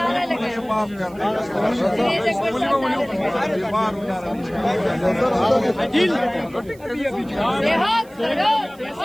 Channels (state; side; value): noise; right; hiss, 27 dB below the sound